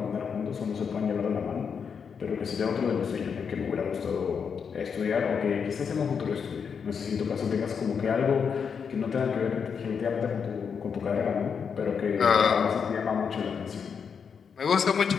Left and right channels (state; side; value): quieter; right; 6.5 dB